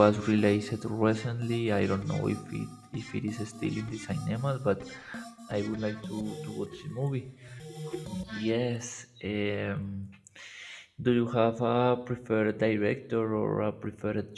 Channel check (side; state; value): both; identical; correlation 1.00